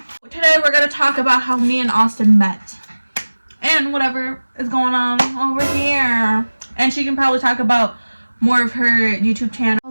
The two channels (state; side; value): inverted; both; correlation -1.00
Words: Today we're gonna talk about how me and Austin met and whatever is going on over here. And she can probably talk about more of her YouTube channel.